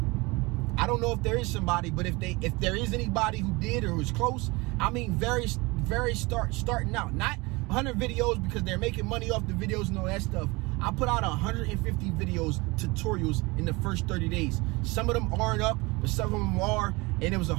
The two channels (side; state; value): left; quieter; 24.5 dB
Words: I don't know if there is somebody, but if there is anybody who did or was close, I mean starting out. Not 100 videos because they're making money off the videos and all that stuff. I put out 150 videos, tutorials in the first 30 days. Some of them aren't up, but some of them are. And it was